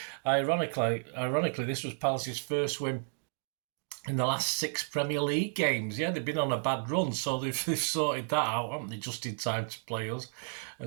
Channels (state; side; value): silent; left; digital silence